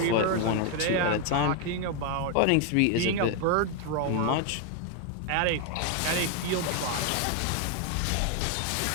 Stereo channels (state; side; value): different; both; correlation 0.01